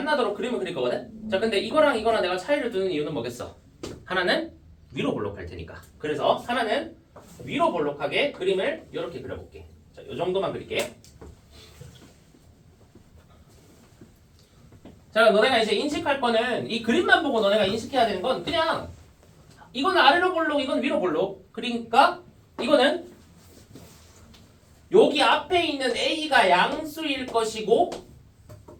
그림을 그릴 거거든? 자, 근데 이거랑 이거랑 내가 차이를 두는 이유는 뭐겠어? 하나는 위로 볼록할 테니까. 그래서 하나는 위로 볼록하게 그림을 이렇게 그려볼게. 자, 이 정도만 그릴게. 자, 너네가 이제 인식할 거는 이 그림만 보고 너네가 인식해야 되는 건 그냥 이건 아래로 볼록, 이건 위로 볼록. 그러니까 이거는 여기 앞에 있는 A가 양수일 것이고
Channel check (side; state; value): both; identical; correlation 1.00